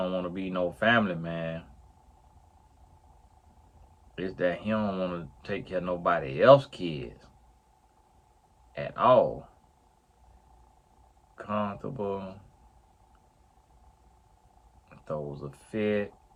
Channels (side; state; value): both; identical; correlation 1.00